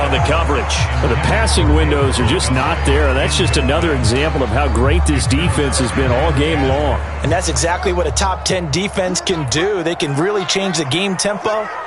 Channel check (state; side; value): identical; both; correlation 1.00